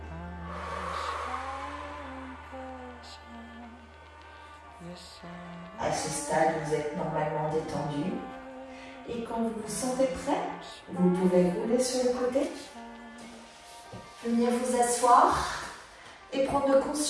À ce stade, vous êtes normalement détendu. Et quand vous vous sentez prêt, vous pouvez rouler sur le côté. Venir vous asseoir et prendre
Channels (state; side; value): identical; both; correlation 1.00